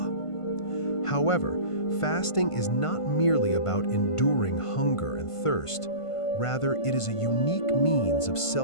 However, fasting is not merely about enduring hunger and thirst. Rather, it is a unique means of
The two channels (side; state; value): right; late; 1.5 ms